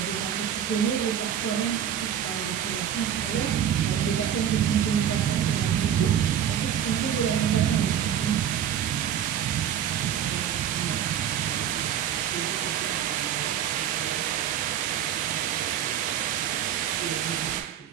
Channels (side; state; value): left; quieter; 9.6 dB